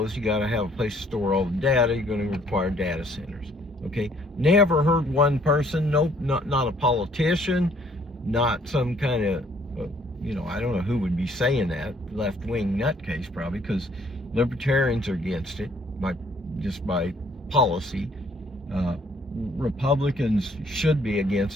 you got to have a place to store all the data. You're going to require data centers. Okay, never heard one person, nope, not a politician, not some kind of, I don't know who would be saying that, left-wing nutcase probably, because libertarians are against it by policy. Republicans should be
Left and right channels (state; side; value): normal; both; correlation 0.63